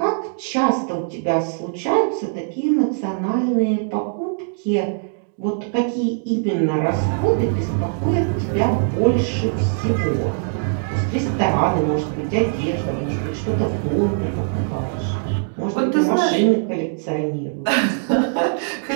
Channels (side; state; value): left; silent; 65 dB below the other